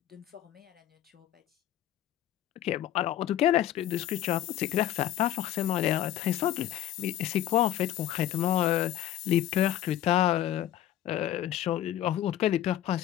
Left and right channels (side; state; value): right; quieter; 12.0 dB